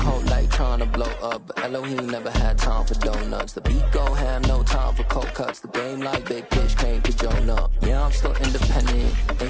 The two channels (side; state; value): both; identical; correlation 1.00